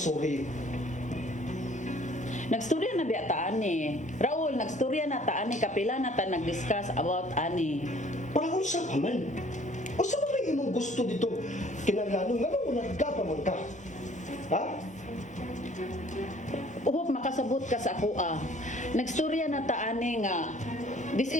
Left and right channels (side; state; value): both; normal; correlation 0.55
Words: sorry? Nagstorya na biya ta ani. Raul, nagstorya na ta ani. Kapila na ta nag-discuss about ani. Parang kung sa paman. O sa mga imong gusto dito? Kinaglanong nga mo nagkapaman ka. Ha? Uhop makasabot ka sa ako ah. Nagstorya na ta ani nga. This